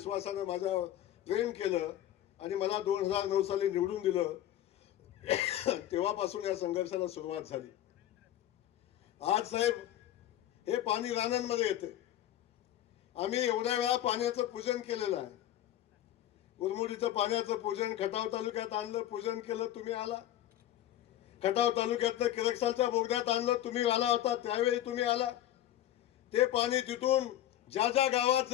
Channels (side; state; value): right; quieter; 12.8 dB